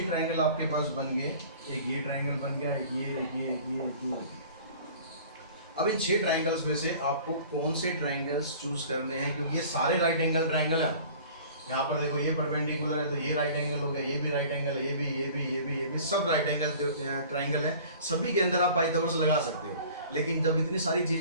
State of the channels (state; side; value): inverted; both; correlation -0.46